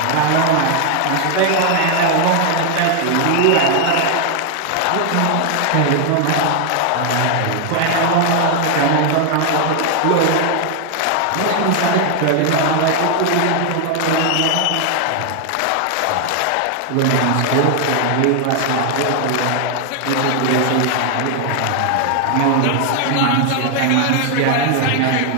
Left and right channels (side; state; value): both; different; correlation 0.00